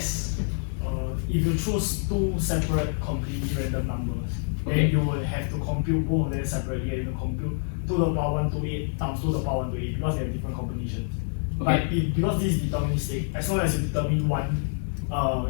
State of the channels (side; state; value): right; silent; 57 dB below the other